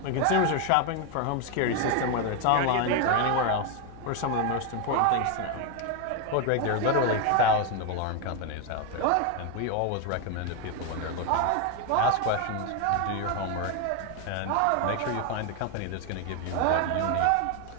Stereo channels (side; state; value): both; different; correlation 0.01